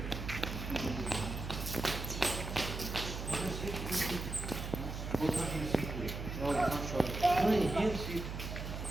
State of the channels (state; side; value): noise; right; hum, 6 dB below the sound